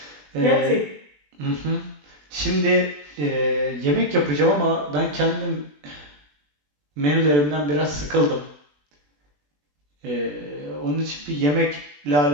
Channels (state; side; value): late; left; 20 ms